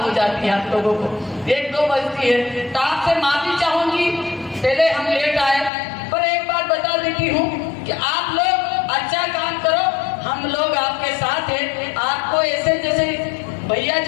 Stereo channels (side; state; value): right; drops out; at 5.7 s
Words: हो जाती है, आप लोगों को 1-2 बजती है, तो आपसे माफी चाहूंगी पहले हम लेट आए। पर एक बात बता देती हूँ कि आप लोग अच्छा काम करो, हम लोग आपके साथ हैं। आपको ऐसे जैसे भैया